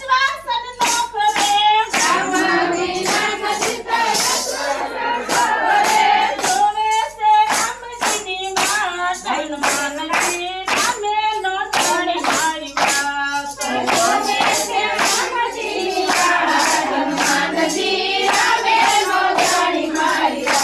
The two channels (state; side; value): noise; right; hum, 27 dB below the sound